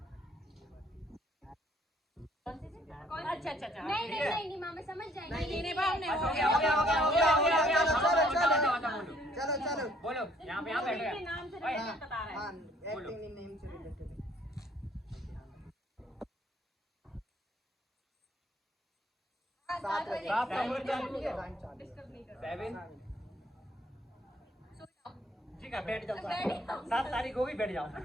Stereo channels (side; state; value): both; normal; correlation 0.62